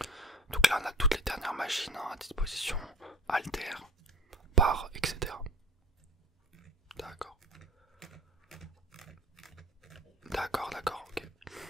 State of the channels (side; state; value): both; normal; correlation 0.44